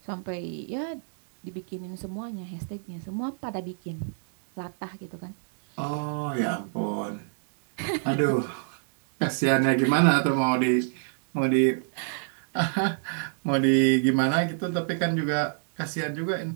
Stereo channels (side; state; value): left; silent; digital silence